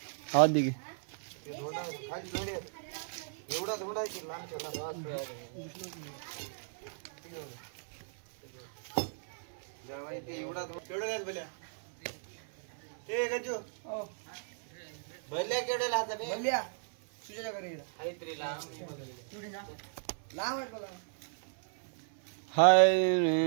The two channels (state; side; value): silent; left; 54 dB below the other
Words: आवाज दे की. एवढा थोडा की लहान एवढा केवढं काय भल्या ते गजो भल्या केवढ्या लाता भल्या तुझ्या घरी हाय